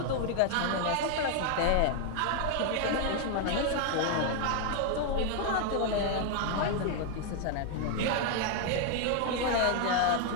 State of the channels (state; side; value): different; both; correlation 0.00